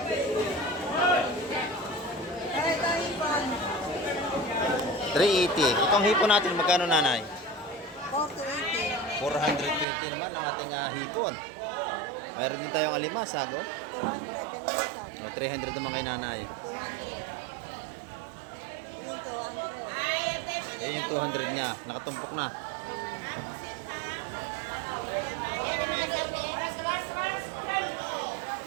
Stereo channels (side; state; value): left; drops out; at 9.9 s